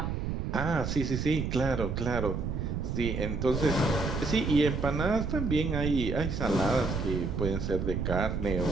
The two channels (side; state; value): right; noise; rumble, 2 dB below the sound